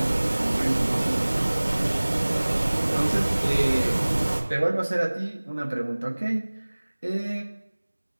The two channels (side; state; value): both; inverted; correlation -1.00